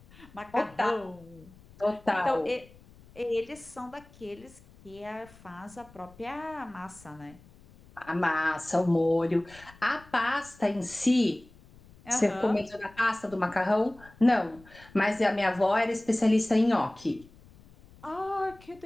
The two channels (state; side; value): noise; left; rumble, 24 dB below the sound